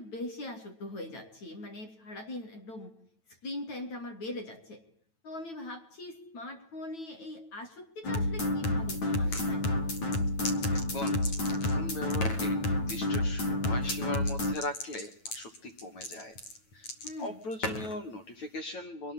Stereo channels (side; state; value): right; late; 9.1 ms